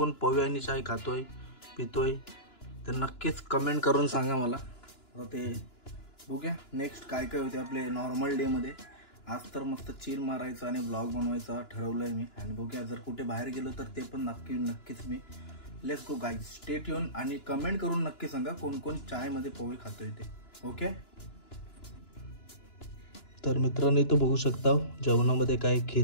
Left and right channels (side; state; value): right; late; 2.9 ms